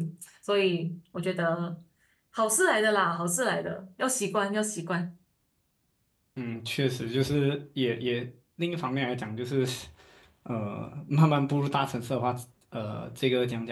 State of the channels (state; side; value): identical; both; correlation 1.00